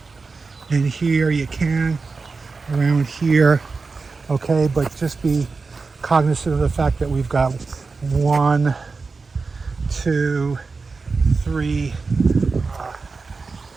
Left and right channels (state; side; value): quieter; left; 4.3 dB